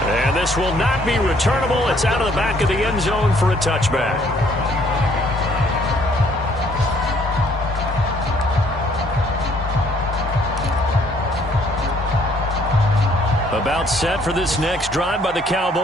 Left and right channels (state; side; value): normal; both; correlation 0.63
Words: And this will not be returnable. It's out of the back of the end zone for a touchback. About set for this next drive by the